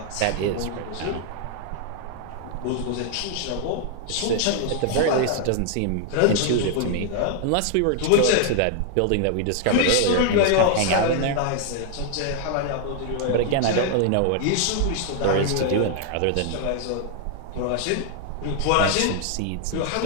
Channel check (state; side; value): different; both; correlation 0.00